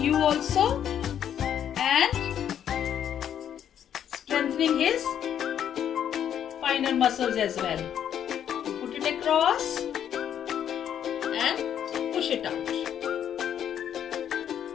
you also and strengthening his finer muscles as well. Put it across and push it out.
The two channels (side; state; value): right; quieter; 9.5 dB